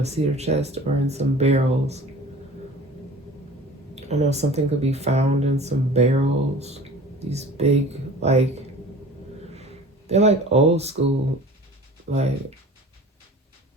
cedar chest or in some barrels. I know something could be found in some barrels. These big, like, they're like old school, like,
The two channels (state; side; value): normal; both; correlation 0.42